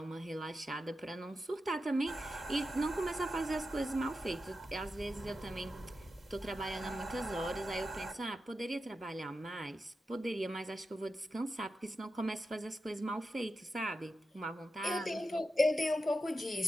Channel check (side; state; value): both; normal; correlation 0.90